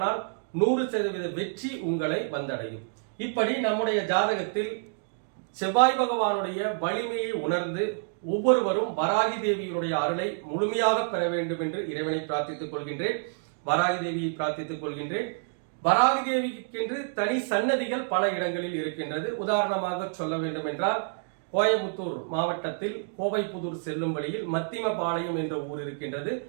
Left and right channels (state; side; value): silent; left; digital silence